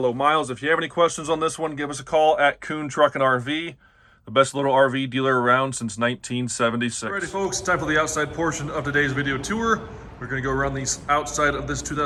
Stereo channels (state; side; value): identical; both; correlation 1.00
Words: miles. If you have any questions on this one, give us a call at Kuhn Truck and RV, the best little RV dealer around since 1976. Alrighty, folks, time for the outside portion of today's video tour. We're going to go around the outside of this